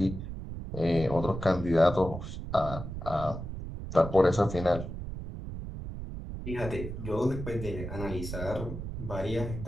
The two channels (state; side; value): noise; right; rumble, 8 dB below the sound